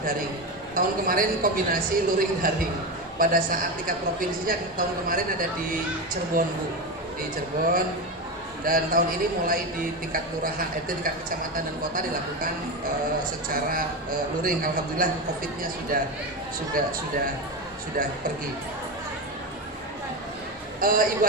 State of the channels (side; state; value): both; normal; correlation 0.17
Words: daring. Tahun kemarin kombinasi luring daring. Pada saat tingkat provinsinya tahun kemarin ada di Cirebon Bu, di Cirebon. Dan tahun ini mulai di tingkat kelurahan, tingkat kecamatan dan kota dilakukan secara luring. Alhamdulillah COVID-nya sudah pergi. Ibu